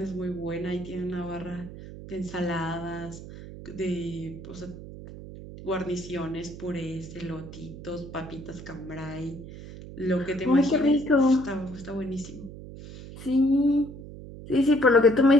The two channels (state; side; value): noise; right; hum, 13 dB below the sound